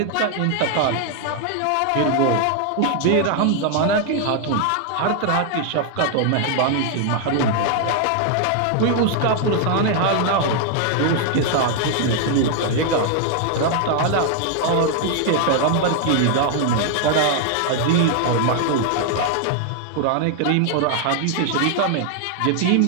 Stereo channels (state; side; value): different; both; correlation 0.00